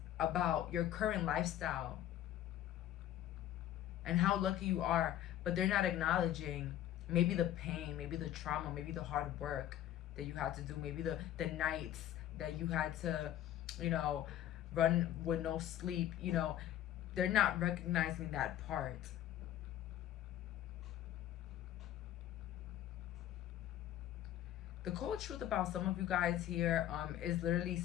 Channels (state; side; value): quieter; right; 12.1 dB